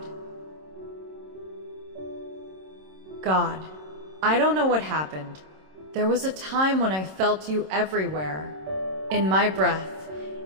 God, I don't know what happened. There was a time when I felt you everywhere, in my breath,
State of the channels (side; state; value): left; late; 26 ms